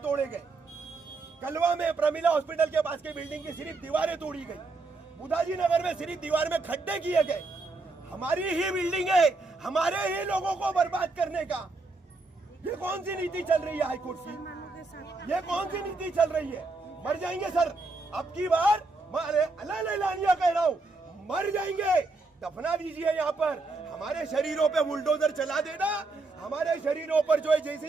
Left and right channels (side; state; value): left; quieter; 3.4 dB